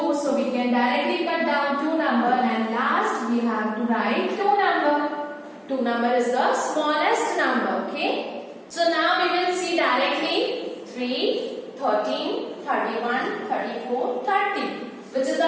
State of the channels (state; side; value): identical; both; correlation 1.00